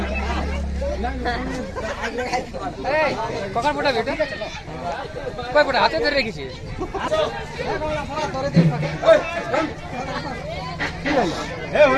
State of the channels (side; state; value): both; identical; correlation 1.00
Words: কখন ফোটা বেটা কয় ফোটা হাতে ধরে রেখেছি ए